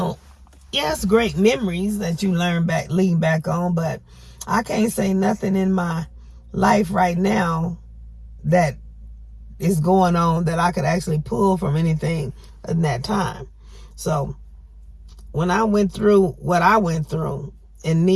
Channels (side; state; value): both; identical; correlation 1.00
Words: Yes, great memories that you lean back on, but I can't say nothing in my life right now that is going on that I could actually pull from anything in that time. So when I went through what I went through and